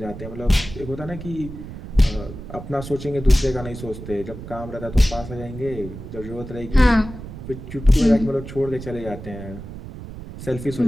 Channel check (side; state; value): right; noise; rumble, 11 dB below the sound